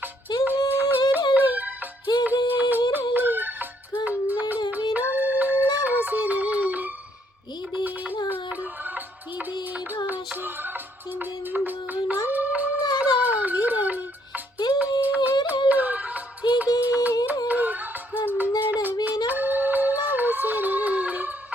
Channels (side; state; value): both; normal; correlation 0.69